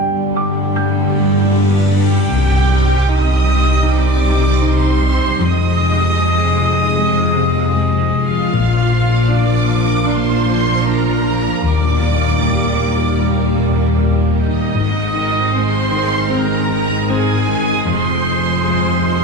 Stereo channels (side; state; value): both; normal; correlation 0.40